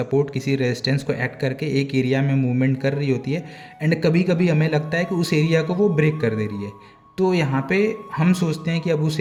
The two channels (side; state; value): both; identical; correlation 1.00